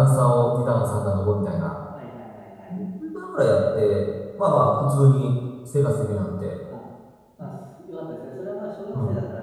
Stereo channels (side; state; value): both; identical; correlation 1.00